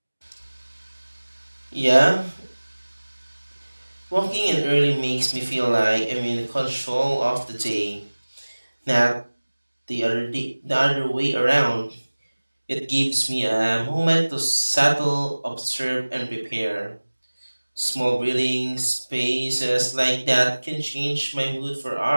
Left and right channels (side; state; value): both; inverted; correlation -1.00